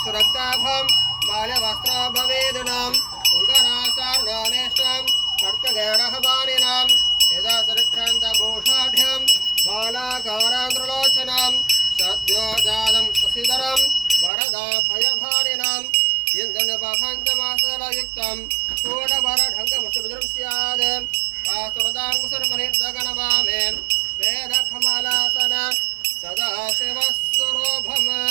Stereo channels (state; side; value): drops out; left; at 14.3 s